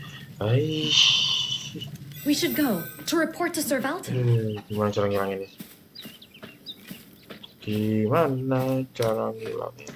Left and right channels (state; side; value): identical; both; correlation 1.00